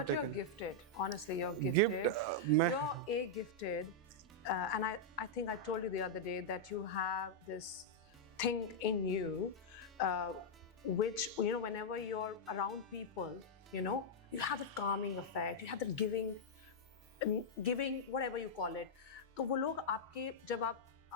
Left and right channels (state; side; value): normal; both; correlation -0.05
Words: But you're gifted. Honestly, you're gifted. You're gifted. And I think I told you the other day that you have this thing in you, which whenever you're around people, you have that calming effect. You have that giving, whatever you call it. तो वो लोग आपके जब आप